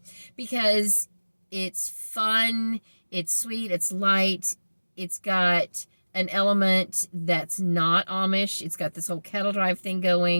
because it's fun, it's sweet, it's light, it's got an element that's not Amish. It's got this whole cattle drive thing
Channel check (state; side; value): inverted; both; correlation -1.00